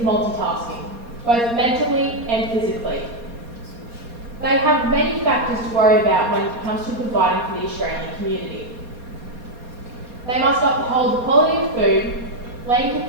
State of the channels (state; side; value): late; left; 4.2 ms